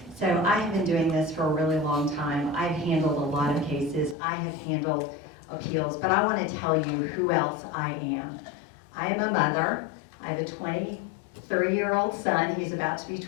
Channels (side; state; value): right; drops out; at 4.2 s